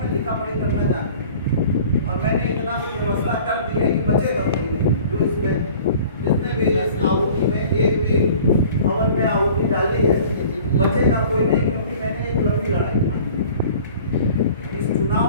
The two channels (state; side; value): inverted; both; correlation -0.47